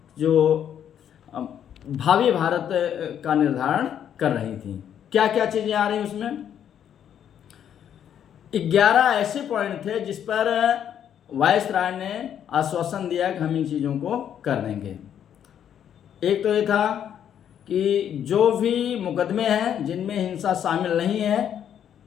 जो भावी भारत का निर्धारण कर रही थी। क्या क्या चीज़ें आ रही उसमें? 11 ऐसे पॉइंट थे जिस पर वायसराय ने आश्वासन दिया कि हम इन चीज़ों को कर देंगे। एक तो ये था कि जो भी मुकदमे हैं जिनमें हिंसा शामिल नहीं है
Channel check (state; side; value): quieter; right; 9.4 dB